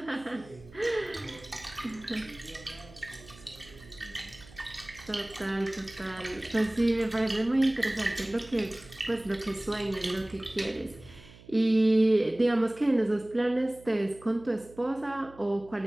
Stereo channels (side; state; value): right; noise; hum, 21 dB below the sound